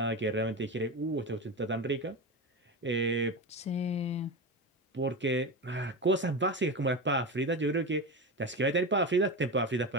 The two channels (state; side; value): normal; both; correlation 0.21